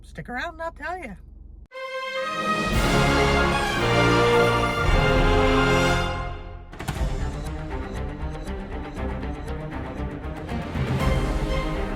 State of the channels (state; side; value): identical; both; correlation 1.00